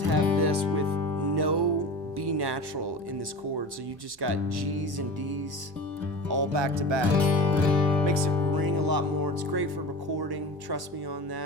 have this with no B natural in this chord. So you just got G's and D's all back to back. Makes it ring a lot more. It's great for recording. Trust me on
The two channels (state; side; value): late; left; 1.1 ms